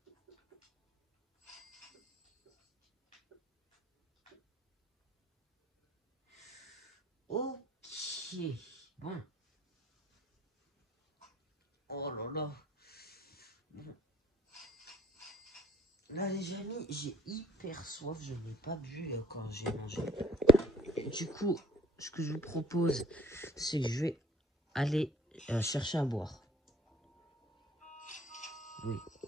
Ok, bon. Oh là là. Bon. Là les amis, j'ai hyper soif, je n'ai pas bu quand j'ai mangé. Et du coup, ce que je vous propose, c'est que je vais aller chercher à boire. Oui.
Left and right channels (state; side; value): normal; both; correlation 0.56